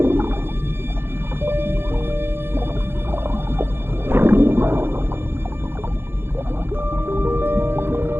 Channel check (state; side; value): late; left; 0.11 ms